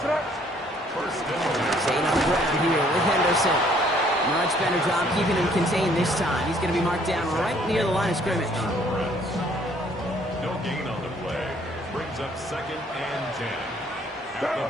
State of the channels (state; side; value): normal; both; correlation 0.62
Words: Staying on the ground here with Henderson. Much better job keeping him contained this time. He's going to be marked down right near the line of scrimmage. No gain on the play. Brings up 2nd and 10